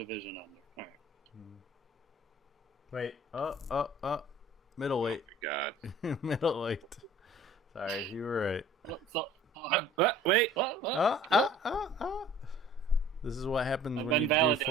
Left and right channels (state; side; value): normal; both; correlation 0.49